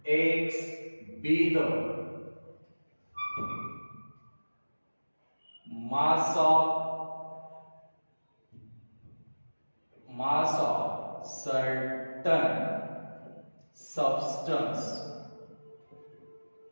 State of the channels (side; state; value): both; inverted; correlation -1.00